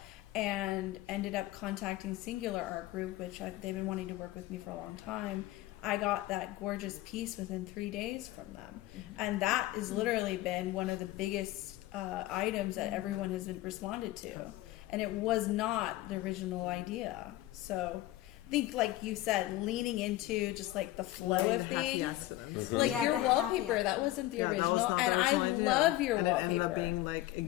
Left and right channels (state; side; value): quieter; right; 16.3 dB